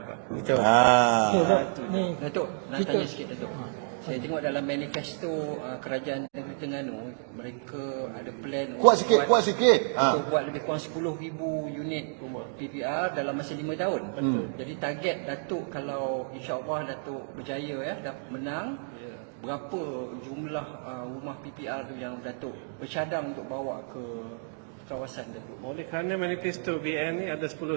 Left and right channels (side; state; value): left; silent; digital silence